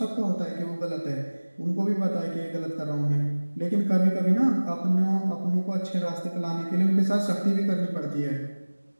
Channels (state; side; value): inverted; both; correlation -1.00